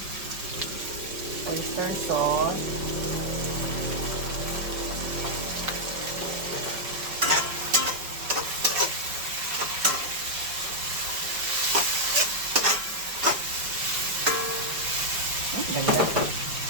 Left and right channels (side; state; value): left; late; 5.3 ms